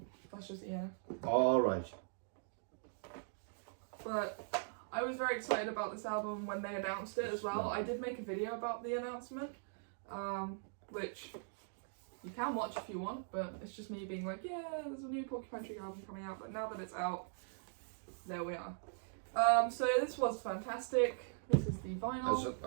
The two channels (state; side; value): silent; left; digital silence